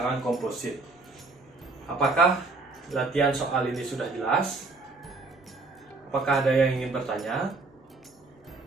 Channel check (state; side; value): quieter; left; 3.6 dB